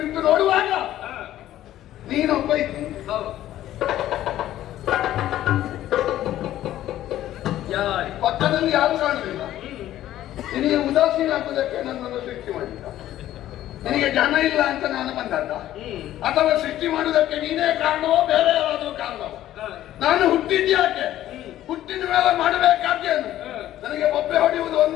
ನೋಡುವಾಗ ನೀನೊಬ್ಬ ಇದ್ದಿ. ಪಕ್ಕದಲ್ಲಿ ಯಾರು ಕಾಣಲಿಲ್ಲ. ನಿನಗೆ ಉದಾಸೀನ ಹಾಕುವುದಕ್ಕೆ ನನ್ನನ್ನು ಸೃಷ್ಟಿ ಮಾಡಿದ್ದ. ನಿನಗೆ ಜನ ಇಲ್ಲ ಅಂತ ನಾನು ಬಂದದ್ದ, ಅಥವಾ ಸೃಷ್ಟಿ ಮಾಡುವುದಕ್ಕೆ ನೀನೇ ಕಾರಣವೋ ಬೇರೆ ಯಾರಾದ್ರೂ ಕಾರಣವೋ? ನಾನು ಹುಟ್ಟಿದ್ಯಾಕೆ? ಹುಟ್ಟಿದ ಮೇಲೆ ಮಾಡಬೇಕಾದ್ದೇನು? ನನಗೆ ಬೊಬ್ಬೆ ಹೊಡೆಯುವುದು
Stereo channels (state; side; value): quieter; right; 13.2 dB